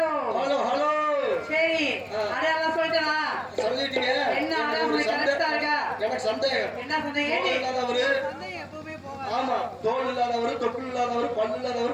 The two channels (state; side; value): identical; both; correlation 1.00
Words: hello hello. சரி, அடையாளம் சொல்லிட்டா? சொல்லிட்டீங்க. என்ன அடையாளம் கரெக்டா இருக்கா? எனக்கு சந்தேகம். என்ன சந்தேகம்? இல்லாதவரு, ஆமா, தோல் இல்லாதவரு, தொப்புள் இல்லாதவரு, பல்லு இல்லாதவரு,